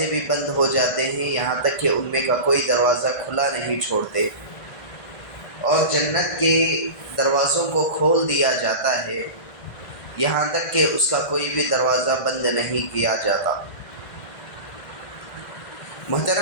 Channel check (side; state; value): right; late; 1.4 ms